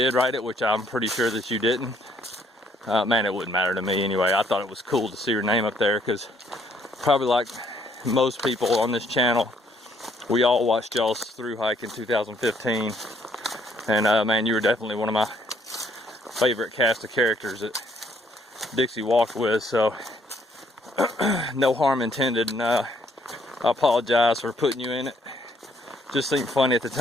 write it, which I'm pretty sure that you didn't, man, it wouldn't matter to me anyway. I thought it was cool to see your name up there, because probably like most people on this channel, we all watched y'all's through hike in 2015, and man, you were definitely one of my favorite cast of characters that Dixie walked with, so no harm intended, and I apologize for putting you in it. Just seemed funny at the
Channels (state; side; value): normal; both; correlation 0.67